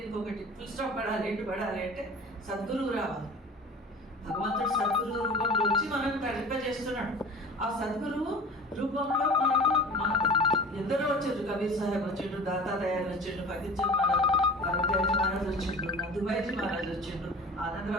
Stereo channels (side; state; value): both; normal; correlation 0.39